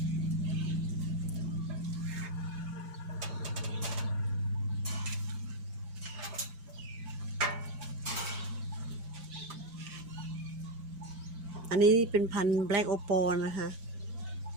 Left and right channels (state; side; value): late; left; 5.9 ms